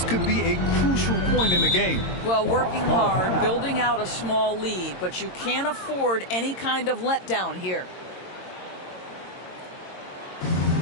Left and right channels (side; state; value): right; late; 22 ms